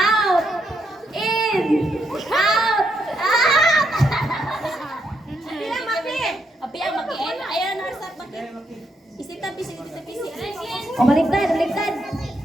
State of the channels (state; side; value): normal; both; correlation 0.78